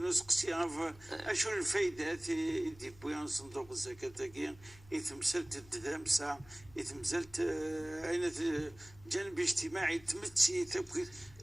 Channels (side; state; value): left; noise; hum, 23 dB below the sound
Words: نسقسي اشو الفايده دي بويان صندوق الزكاه تاكي يتمثلت الدمسه يتمثلت اين جانب اجتماعي تمتسي تبكي